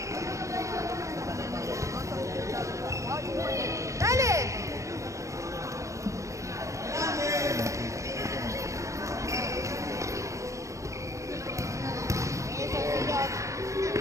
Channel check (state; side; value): late; left; 0.15 ms